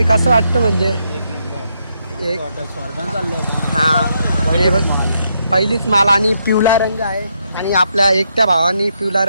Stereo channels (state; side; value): inverted; both; correlation -0.78